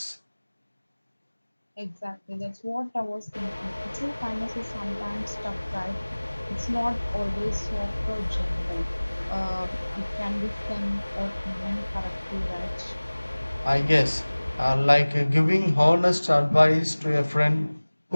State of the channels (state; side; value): inverted; both; correlation -1.00